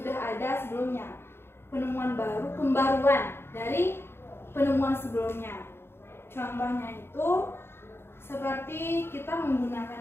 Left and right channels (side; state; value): right; late; 0.11 ms